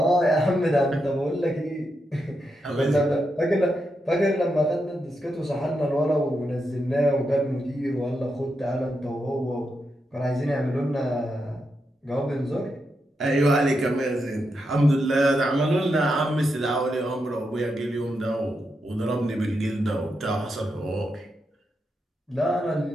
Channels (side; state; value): both; normal; correlation 0.85